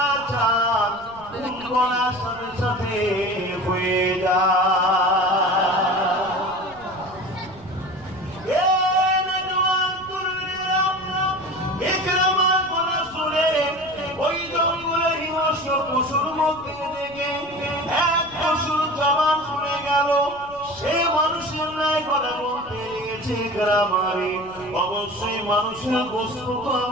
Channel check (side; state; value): right; noise; rumble, 22 dB below the sound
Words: চান বলার সাথে সাথে হয়ে যায়। ওই জঙ্গলের হিংস্র পশুর মধ্যে থেকে এক পশুর জবান খুলে গেল। সে মানুষের ন্যায় কথা বলতে লেগেছে। গ্রামারে অবশ্যই মানুষের বস্তু তো